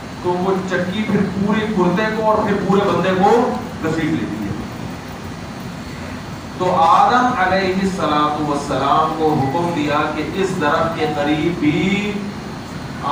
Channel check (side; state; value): both; identical; correlation 1.00